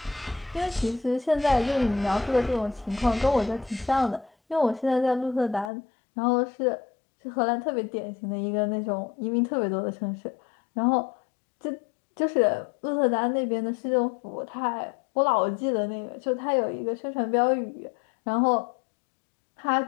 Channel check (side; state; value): right; drops out; at 5.7 s